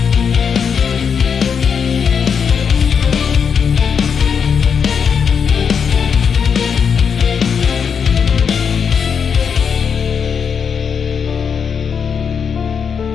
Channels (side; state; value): right; quieter; 6.7 dB